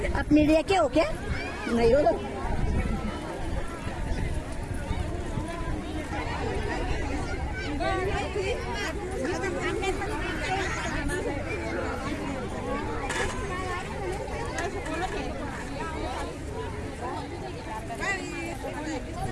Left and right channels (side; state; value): both; identical; correlation 1.00